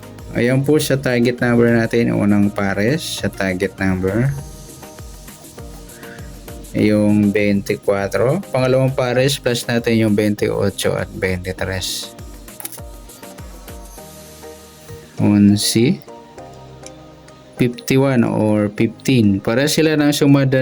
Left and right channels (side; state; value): both; identical; correlation 1.00